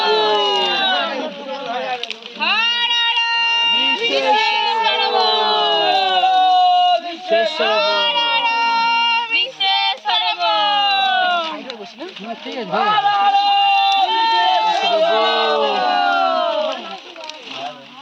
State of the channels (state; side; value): identical; both; correlation 1.00